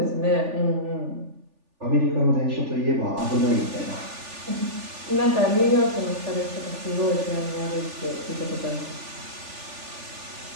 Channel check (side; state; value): left; late; 3.4 ms